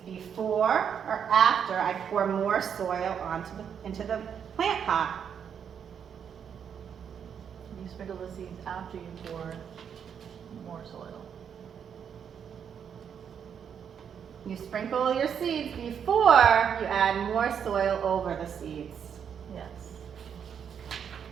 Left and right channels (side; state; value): left; quieter; 7.8 dB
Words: before or after I pour more soil into the plant pot? You sprinkle the seeds after you pour more soil. You sprinkle your seeds before you add more soil over the seeds. Yes.